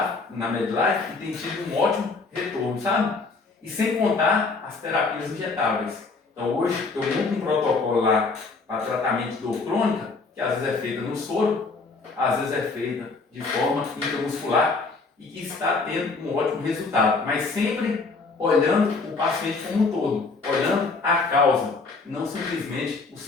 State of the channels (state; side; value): quieter; right; 4.0 dB